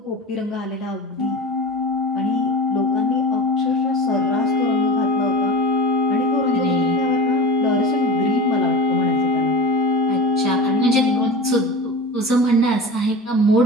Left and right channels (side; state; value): both; normal; correlation 0.31